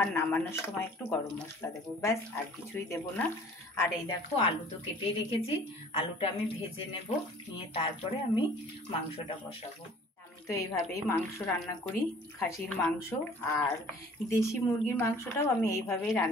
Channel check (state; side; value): normal; both; correlation 0.51